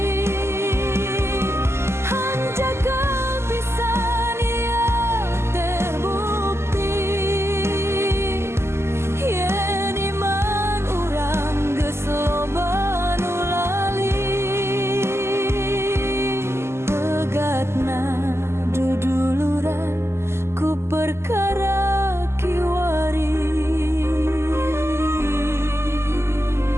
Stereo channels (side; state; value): left; late; 0.12 ms